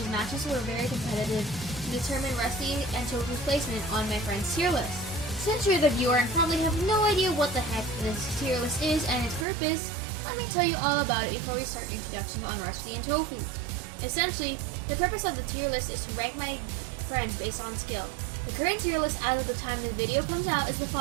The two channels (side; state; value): left; drops out; at 9.5 s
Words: matches were very competitive to determine Rusty and Tofu's placement on my friend's tier list. Since you're the viewer and probably have no idea what the heck this tier list is and its purpose, let me tell you all about it before we start introductions on Rusty and Tofu. Essentially, the purpose of the tier list is to rank my friends based on skill. The current tier list as of the time the video comes out is the